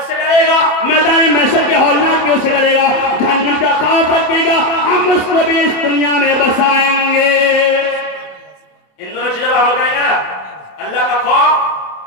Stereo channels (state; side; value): late; right; 27 ms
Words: से डरेगा, मैदान महशर के हौलनाकियों से डरेगा, जहन्नम का खौफ रखेगा, हम उसको भी इस दुनिया में बसाएंगे। इन दोनों चीजों पर अमल करेंगे ना? अल्लाह का